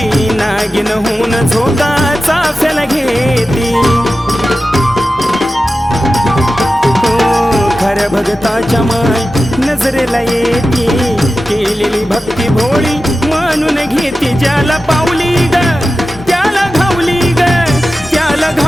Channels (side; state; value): both; normal; correlation 0.93